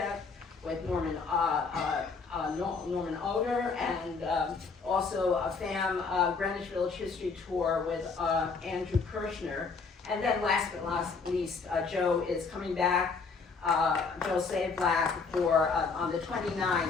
with Norman Oder, and also a FAM Greenwich Village History Tour with Andrew Kirshner. And then last but not least, Joe is coming back, Joe Savlack, for on the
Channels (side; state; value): right; quieter; 4.8 dB